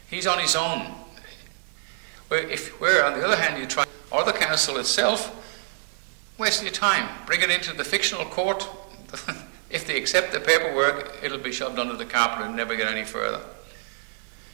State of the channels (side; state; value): left; silent; digital silence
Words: He's on his own. Where on the other hand you try, or the council itself, waste your time. Bring it into the fictional court. If they accept the paperwork, it'll be shoved under the carpet and never get any further.